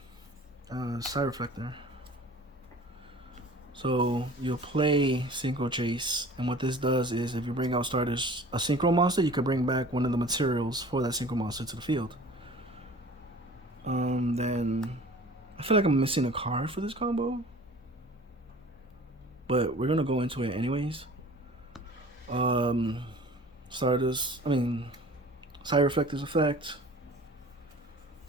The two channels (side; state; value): both; normal; correlation 0.44